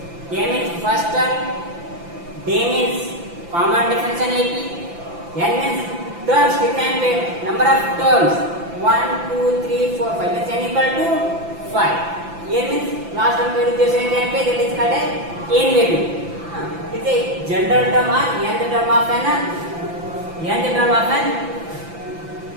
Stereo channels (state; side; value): late; left; 5.9 ms